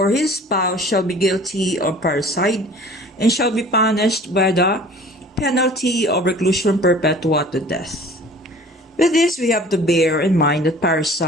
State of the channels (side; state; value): both; normal; correlation 0.47